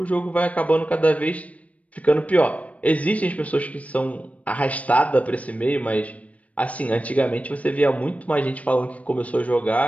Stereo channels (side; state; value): right; late; 0.067 ms